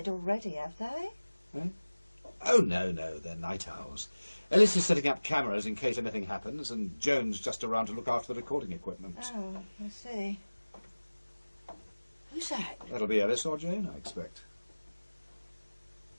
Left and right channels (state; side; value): inverted; both; correlation -1.00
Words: already, have they? Eh? Oh, no, they're night owls. Ellis is setting up cameras in case anything happens, and Joan's just around to look after the recording equipment. Oh, I see. Who's that? That'll be Ellis or Jane, I expect.